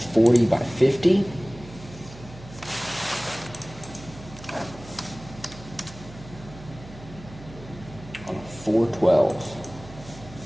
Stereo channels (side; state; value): right; noise; hum, 17 dB below the sound